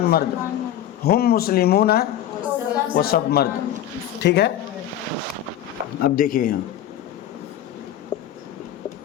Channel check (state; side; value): quieter; right; 11.3 dB